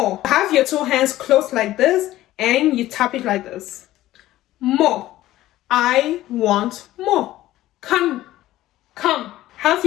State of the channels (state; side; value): quieter; right; 15.2 dB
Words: Have your two hands closed like this, and you tap it like this. More. I want more. Come. Have